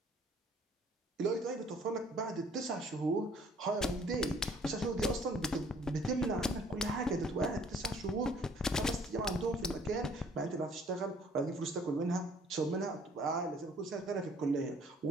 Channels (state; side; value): normal; both; correlation 0.57